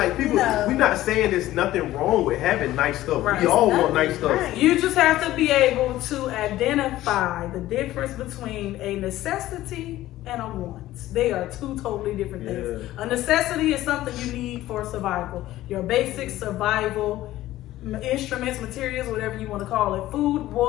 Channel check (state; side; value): quieter; right; 15.2 dB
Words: people, No. we're not saying there's nothing wrong with having nice stuff. Right. We all want nice stuff. Right. You just have to be able to identify the difference between a necessity and a want. They are two totally different things. Yeah. A necessity is something you need for survival. Your basic survival instruments, materials, whatever you want to call it. Food,